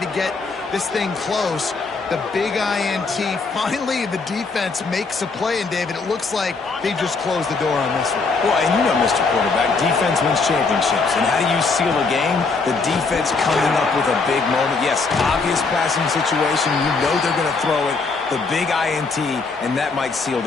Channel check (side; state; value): right; quieter; 4.3 dB